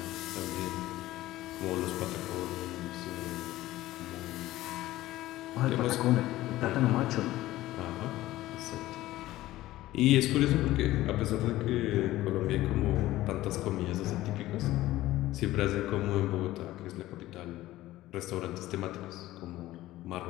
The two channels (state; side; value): quieter; right; 16.1 dB